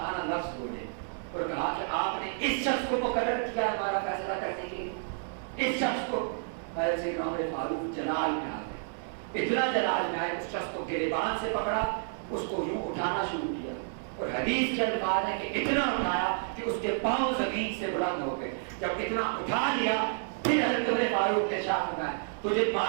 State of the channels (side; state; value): left; silent; 58 dB below the other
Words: لفظ بولے اور کہا کہ آپ نے اس شخص کو مقرر کیا ہے ہمارا فیصلہ کرنے کے لیے. اس شخص کو سیدنا عمر فاروق جلال میں آ گئے، اتنا جلال میں آئے اس شخص کو گریبان سے پکڑا، اس کو یوں اٹھانا شروع کیا اور حدیث کے الفاظ ہے کہ اتنا اٹھایا کہ اس کے پاؤں زمین سے بلند ہو گئے. جب اتنا اٹھا لیا پھر حضرت عمر فاروق نے ارشاد فرمایا تجھے